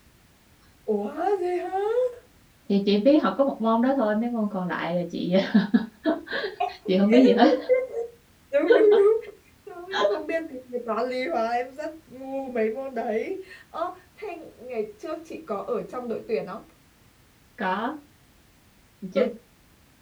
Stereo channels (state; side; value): identical; both; correlation 1.00